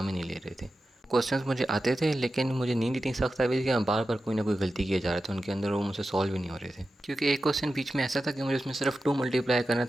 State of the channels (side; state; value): both; normal; correlation 0.92